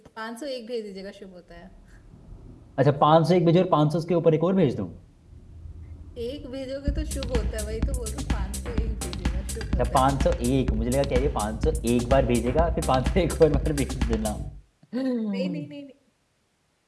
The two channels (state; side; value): identical; both; correlation 1.00